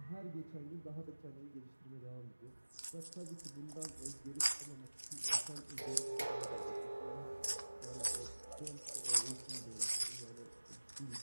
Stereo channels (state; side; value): inverted; both; correlation -1.00